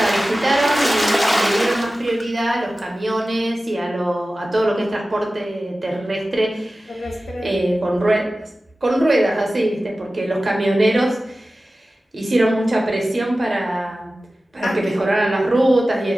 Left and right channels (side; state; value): both; normal; correlation 0.95